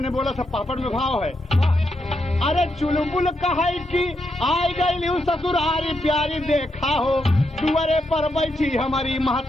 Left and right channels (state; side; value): normal; both; correlation 0.82